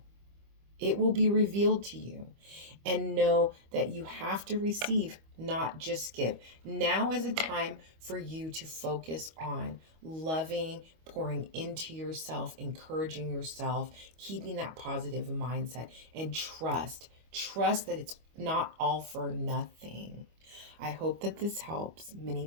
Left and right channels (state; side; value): late; left; 25 ms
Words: It will be revealed to you. And know that you have to receive, not just give. Now is a time for you to focus on loving, pouring into yourself, encouraging yourself, keeping that positive mindset, and trust. Trust that it's not all for nothing. I hope that this helps. Many